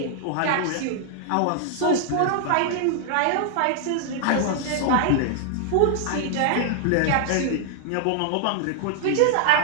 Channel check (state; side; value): different; both; correlation -0.01